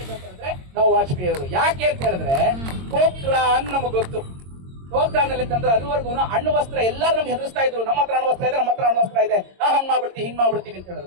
ನಾವು ವಾಜಪೇಯಿ ಅವರು. ಯಾಕೆ ಅಂತ ಹೇಳಿದ್ರೆ ಪೋಖ್ರಾನ್ ನಮಗ್ ಗೊತ್ತು. ಪೋಖ್ರಾನಲ್ಲಿ ಅಂತಂದ್ರೆ ಅದುವರೆಗೂ ಅಣ್ಣು ವಸ್ತ್ರ ಎಲ್ಲರೂ ನಮ್ಗೆ ಹೆದರ್ಸ್ತಾ ಇದ್ರು. ನಮ್ಮ ಹತ್ರ ಅಣ್ಣು ವಸ್ತ್ರ ಇದೆ, ನಮ್ಮ ಹತ್ರ ಅಣ್ಣು ವಸ್ತ್ರ ಇದೆ, ಹಂಗ್ ಮಾಡ್ಬಿಡ್ತೀವಿ ಹಿಂಗ್ ಮಾಡ್ಬಿಡ್ತೀವಿ ಅಂತ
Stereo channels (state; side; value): late; left; 22 ms